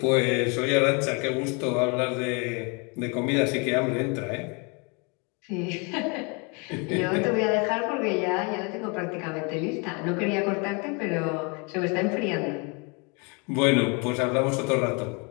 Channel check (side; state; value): right; quieter; 32.3 dB